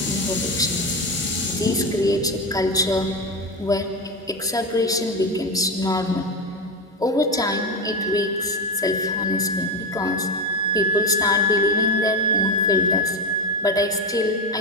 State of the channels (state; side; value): normal; both; correlation 0.15